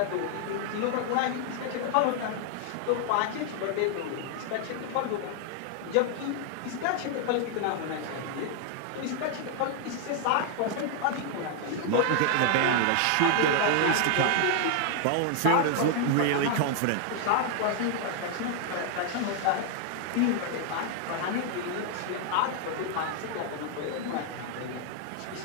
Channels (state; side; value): different; both; correlation 0.00